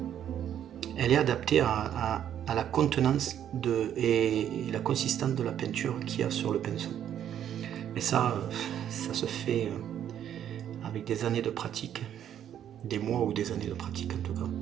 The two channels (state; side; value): quieter; left; 10.1 dB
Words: Elle est adaptée à la contenance et la consistance de la peinture qu'il y a sur le pinceau. Et ça se fait avec des années de pratique, des mois ou des années de pratique en tout cas.